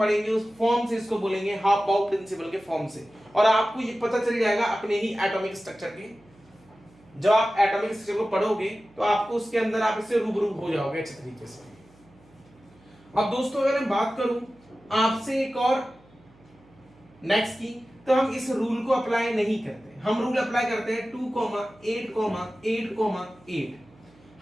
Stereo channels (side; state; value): right; noise; hum, 28 dB below the sound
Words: उस फॉर्म से, इसको बोलेंगे हाफ बाउ प्रिंसिपल के फॉर्म से, और आपको ये पता चल जाएगा अपने ही एटॉमिक स्ट्रक्चर के। जब आप एटॉमिक स्ट्रक्चर को पढ़ोगे तो आपको उसके अंदर आप इससे रूबरू हो जाओगे अच्छे तरीके से। अब दोस्तों अगर मैं बात करूं आपसे एक और नेक्स्ट की, तो हम इस रूल को अप्लाई नहीं करते, हम रूल अप्लाई करते हैं 2,8,8,8।